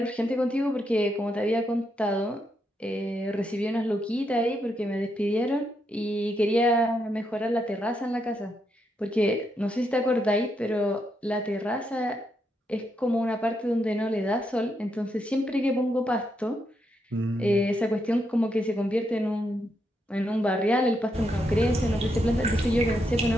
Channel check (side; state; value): both; normal; correlation 0.80